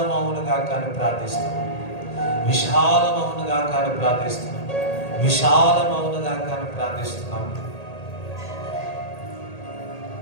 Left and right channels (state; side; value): late; right; 1.8 ms